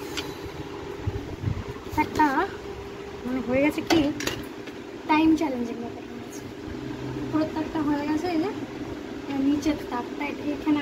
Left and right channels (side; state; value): both; identical; correlation 1.00